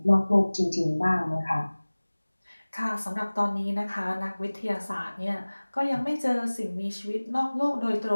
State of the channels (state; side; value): inverted; both; correlation -1.00